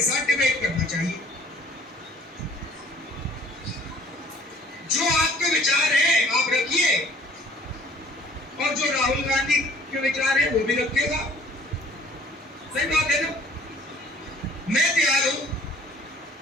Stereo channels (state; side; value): normal; both; correlation 0.55